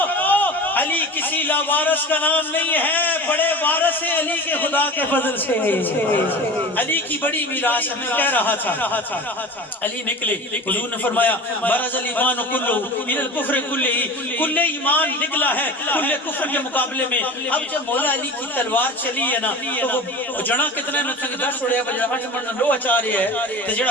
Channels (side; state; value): both; normal; correlation 0.34